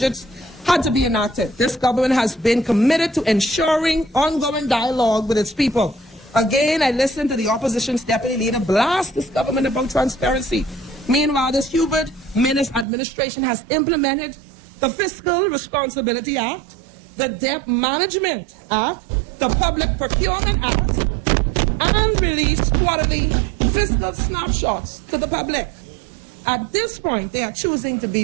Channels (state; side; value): drops out; left; at 12.9 s